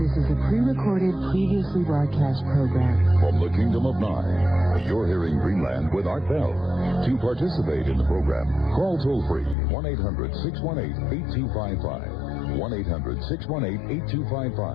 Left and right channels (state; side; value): drops out; right; at 9.6 s